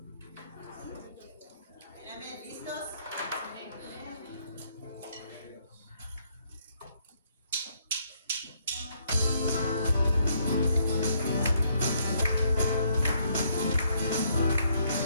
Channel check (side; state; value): both; inverted; correlation -0.71